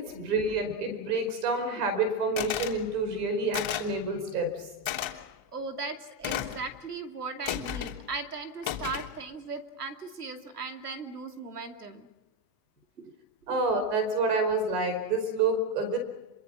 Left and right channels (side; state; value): left; late; 1.3 ms